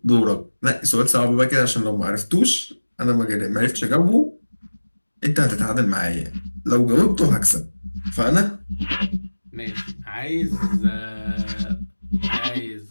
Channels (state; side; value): inverted; both; correlation -1.00